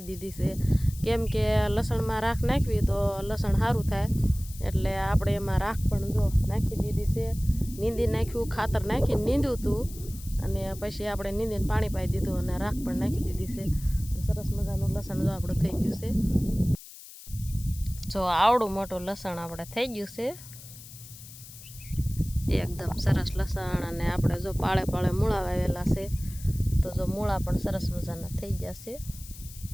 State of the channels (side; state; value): left; noise; hiss, 17 dB below the sound